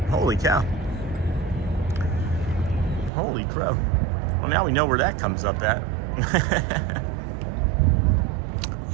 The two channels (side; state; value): left; drops out; at 3.1 s